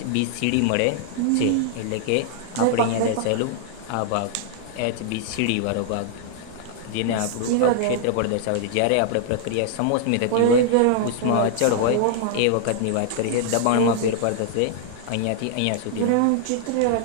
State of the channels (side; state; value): both; different; correlation 0.00